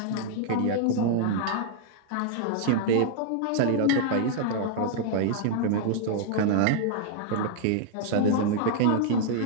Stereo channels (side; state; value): both; different; correlation -0.01